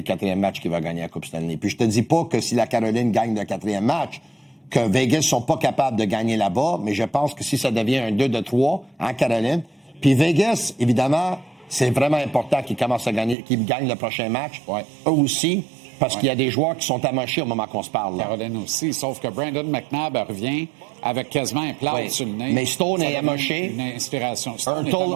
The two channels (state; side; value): drops out; left; at 13.4 s